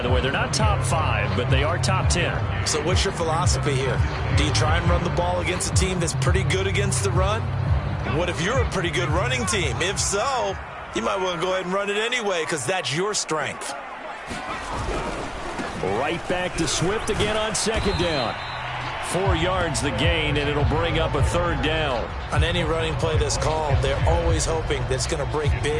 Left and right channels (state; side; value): identical; both; correlation 1.00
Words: the way, they're not top 5, but they are top 10. So what's your philosophy here? Do you try and run the ball against a team that's pretty good against the run? What if you're a pretty good running team? If so, you might want to go ahead and run it anyway because that's your strength. Right back to Swift again on 2nd down. 4 yards the gain, and it'll bring up a 3rd down. On any running play that's called, they're always hoping that it's going to break